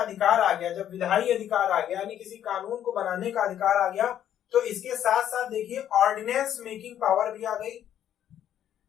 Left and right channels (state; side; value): quieter; right; 10.6 dB